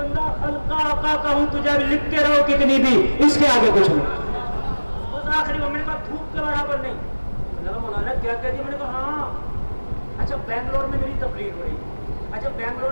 خلقہ آقا کا ہوں، تجھے بھی لکھتے رہو کتنی بھی، اس کے آگے کچھ نہیں۔ اس آخری میں نے کہا دھوپ کے برابر نہیں، میں نے کہا مولانا کیا کہہ دی؟ میں نے کہا ہاں اچھا بنگلور میں میری تقریر ہو رہی ہے، اچھا بنگلور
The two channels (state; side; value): inverted; both; correlation -1.00